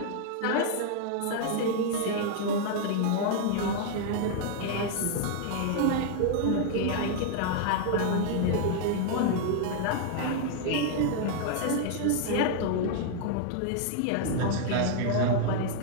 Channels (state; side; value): different; both; correlation 0.00